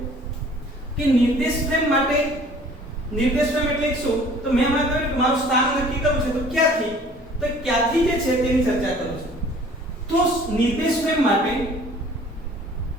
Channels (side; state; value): both; normal; correlation 0.51